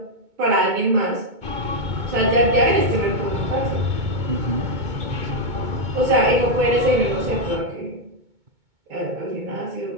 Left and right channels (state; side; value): late; left; 2.2 ms